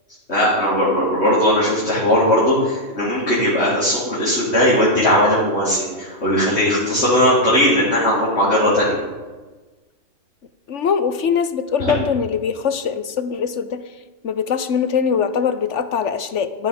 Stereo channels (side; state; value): right; late; 3.5 ms